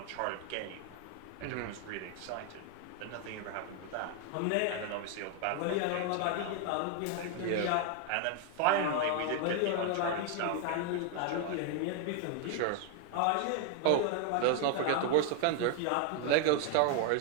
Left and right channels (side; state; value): both; different; correlation 0.00